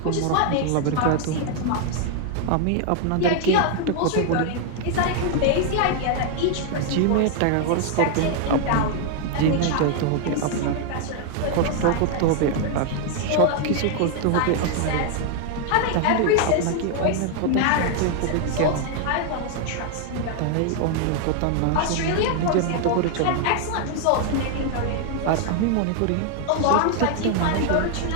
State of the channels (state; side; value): different; both; correlation 0.00